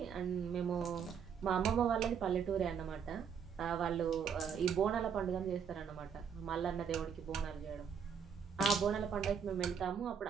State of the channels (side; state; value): left; quieter; 7.0 dB